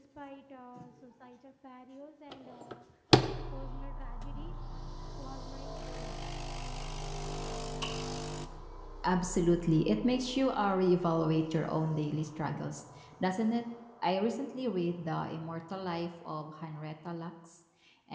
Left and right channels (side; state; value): both; identical; correlation 1.00